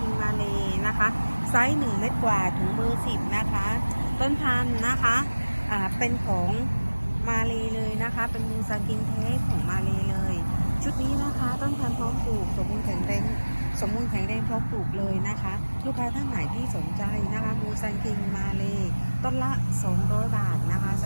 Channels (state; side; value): inverted; both; correlation -1.00